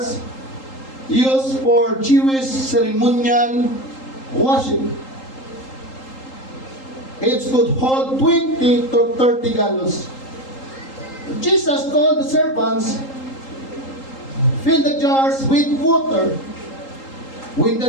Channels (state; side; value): late; right; 3.8 ms